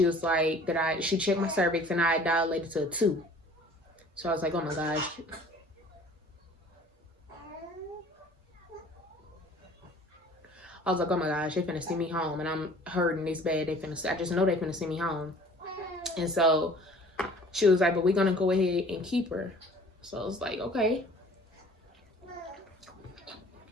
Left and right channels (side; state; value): both; normal; correlation 0.50